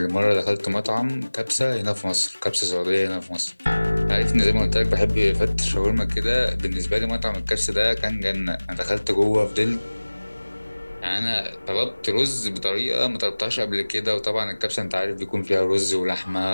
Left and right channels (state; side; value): inverted; both; correlation -1.00